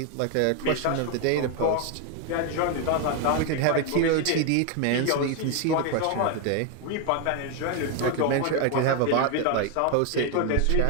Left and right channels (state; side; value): different; both; correlation 0.01